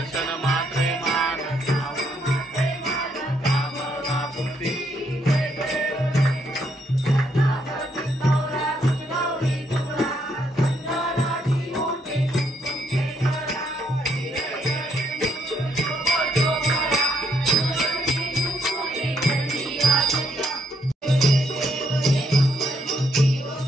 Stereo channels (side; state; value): both; normal; correlation 0.73